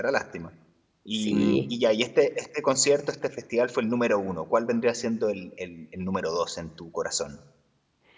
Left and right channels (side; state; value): both; identical; correlation 1.00